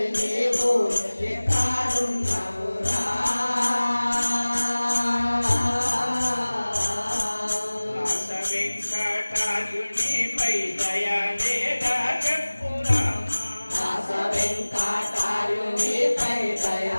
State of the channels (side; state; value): both; inverted; correlation -1.00